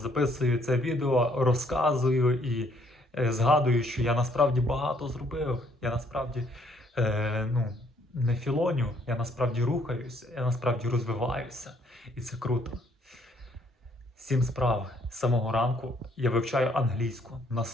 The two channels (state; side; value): normal; both; correlation 0.66